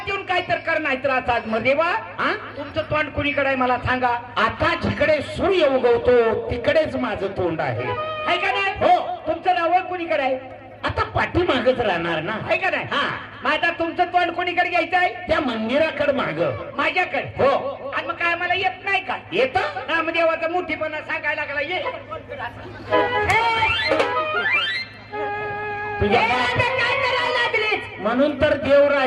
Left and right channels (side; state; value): both; identical; correlation 1.00